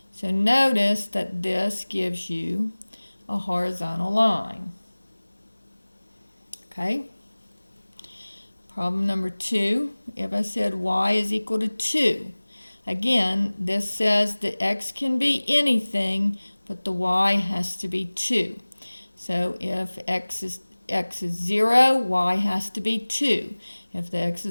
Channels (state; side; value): inverted; both; correlation -1.00